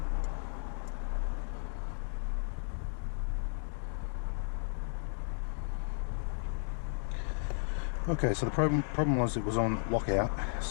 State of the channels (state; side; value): silent; right; digital silence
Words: Okay, so the problem was it was on lockout,